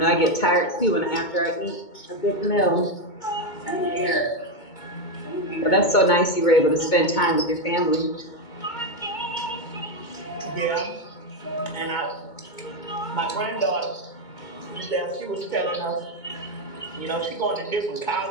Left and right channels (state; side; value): late; right; 2.2 ms